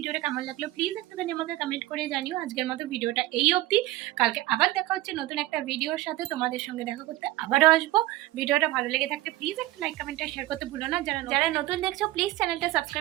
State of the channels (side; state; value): left; quieter; 17.2 dB